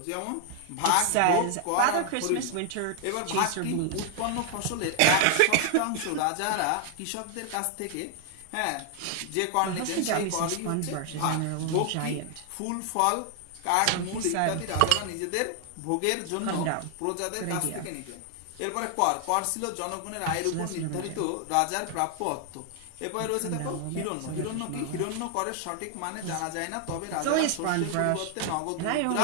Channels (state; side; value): different; both; correlation 0.00